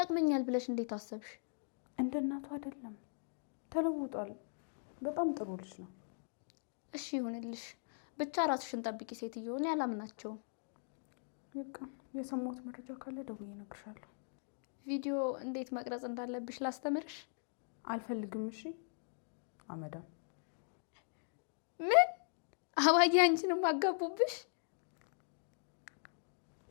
ብለሽ እንዴት አሰብሽ? እንደ እናቱ አይደለም፣ ተለውጧል። በጣም ጥሩ ልጅ ነው። እሺ ይሁንልሽ። ብቻ ራስሽን ጠብቂ ሴትዮ። እኔ አላምናቸውም። በቃ የሰማሁት መረጃ ካለ ደውዬ እነግርሻለሁ። ቪዲዮ እንዴት መቅረጽ እንዳለብሽ ላስተምርሽ? አልፈልግም። እሺ አመዳም። ምን አባዬ አንቺንም አጋቡብሽ?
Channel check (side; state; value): right; silent; digital silence